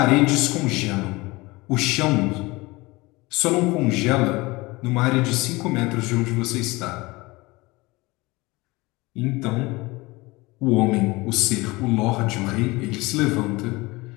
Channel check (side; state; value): right; quieter; 22.6 dB